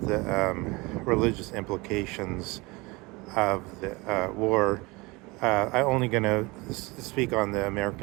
religious implications of the war? I'm only going to speak on the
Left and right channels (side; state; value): left; quieter; 24.4 dB